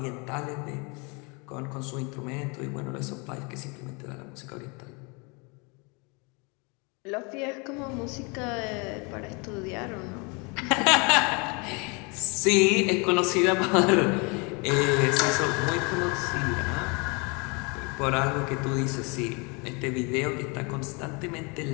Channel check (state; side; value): quieter; right; 30.8 dB